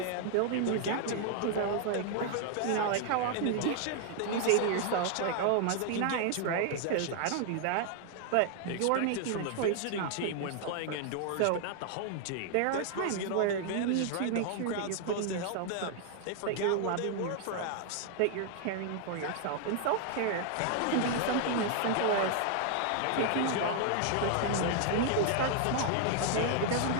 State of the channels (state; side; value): different; both; correlation 0.00